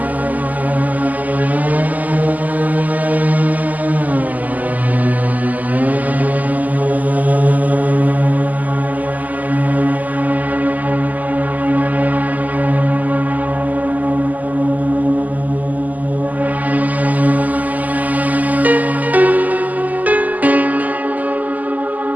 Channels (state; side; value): late; left; 0.079 ms